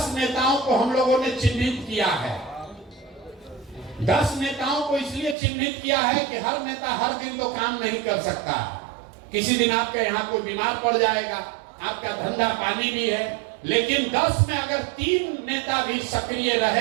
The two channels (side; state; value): left; drops out; at 5.4 s